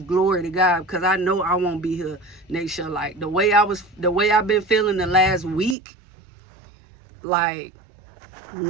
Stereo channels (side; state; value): left; drops out; at 5.8 s